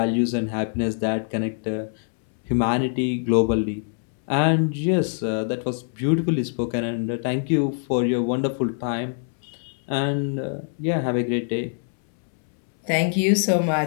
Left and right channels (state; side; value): silent; right; 63 dB below the other